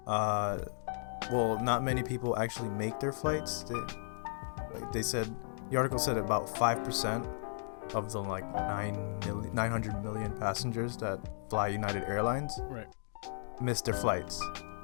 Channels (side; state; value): right; silent; digital silence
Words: well, not many people actually make their flights. They said, the article said about 5% of the like 900 million passengers that fly United Airlines Right. miss their flights.